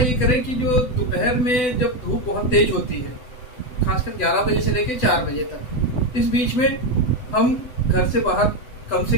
करें कि जो दोपहर में जब धूप बहुत तेज होती है, खासकर 11 बजे से लेकर 4 बजे तक, इस बीच में हम घर से बाहर कम से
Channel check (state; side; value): late; right; 8.0 ms